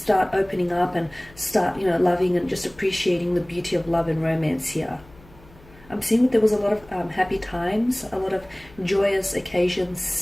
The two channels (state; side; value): noise; left; hum, 24 dB below the sound